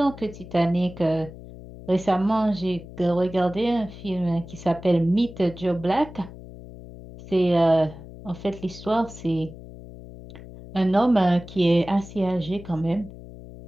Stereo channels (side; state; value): left; noise; hum, 16 dB below the sound